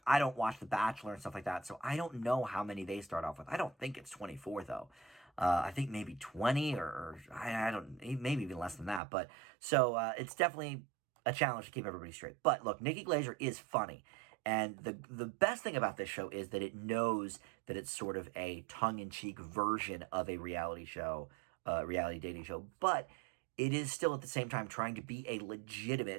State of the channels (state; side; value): drops out; left; at 9.0 s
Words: I don't watch The Bachelor and stuff like that, so I don't know how many they start off with. I don't think it's 24 though. I think maybe 20 or I don't, maybe even less than that. But so it's definitely a challenge to keep everybody straight. But look, Nikki Glaser is funny. And the best thing about this show is that it knows that it's sort of a tongue-in-cheek version of a reality show, reality dating show. But it is still at the same time trying to be a